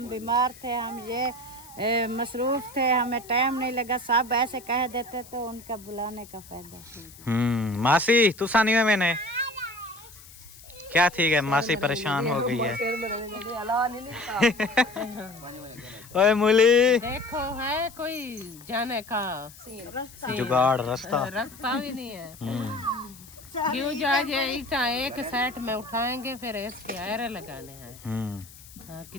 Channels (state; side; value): noise; left; hiss, 20 dB below the sound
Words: बीमार थे, हम ये मसरूफ थे, हमें टाइम नहीं लगा, सब ऐसे कह देते तो उनका बुलाने का फायदा। मासी तू सानी में मैंने क्या ठीक है, मासी परेशान हो गई है। ओए मूली देखो है कोई जाने का जुगाड़ रास्ता रास्ता भी नहीं है। क्यों जा ईटा एक सेट में उठाएंगे फिर इसके आयरे लगाने हैं। हाँ,